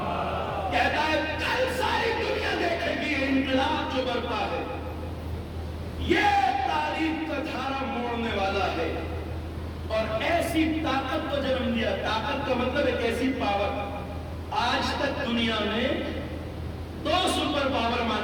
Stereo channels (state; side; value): identical; both; correlation 1.00